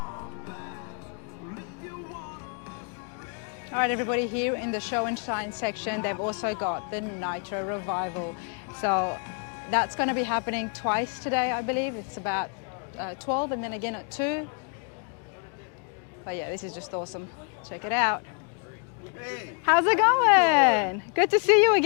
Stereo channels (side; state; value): right; quieter; 39.7 dB